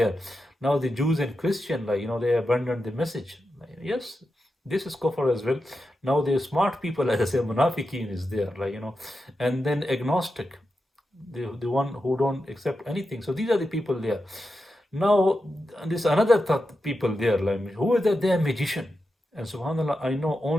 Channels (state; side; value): normal; both; correlation 0.89